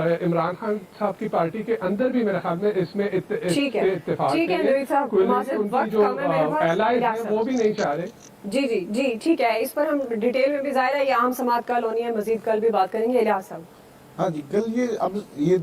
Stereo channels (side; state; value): both; identical; correlation 1.00